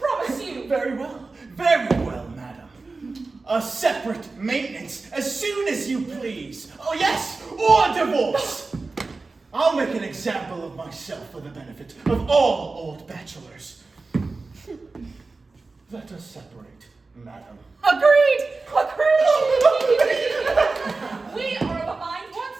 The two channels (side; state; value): left; quieter; 3.8 dB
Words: you. Very well, madam. A separate maintenance as soon as you please. Oh yes, or divorce. I'll make an example of myself for the benefit of all old bachelors. Let us separate, madam. Agreed! We are of a mind